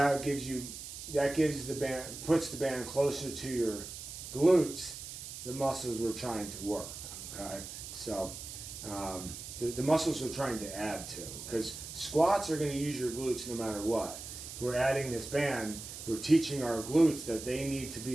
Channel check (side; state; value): right; noise; hiss, 10 dB below the sound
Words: gives the band, puts the band closer to your glutes, the muscles we're trying to work. Okay, so the muscles we're trying to add to, because squats are going to use your glutes no matter what. We're adding this band. We're teaching our glutes that they need to